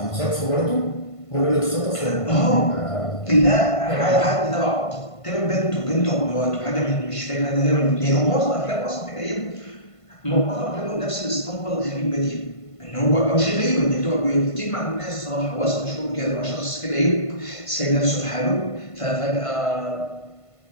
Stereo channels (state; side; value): late; right; 1.5 ms